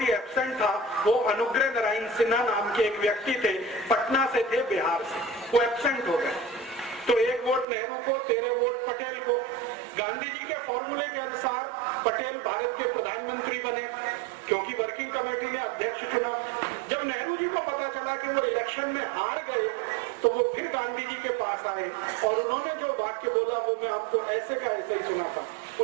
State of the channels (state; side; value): drops out; left; at 7.7 s